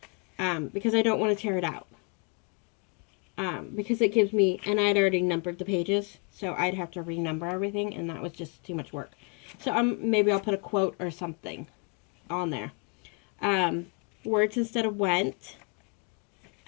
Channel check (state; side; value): quieter; right; 35.5 dB